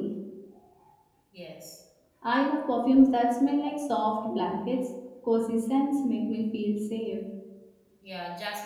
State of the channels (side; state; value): both; identical; correlation 1.00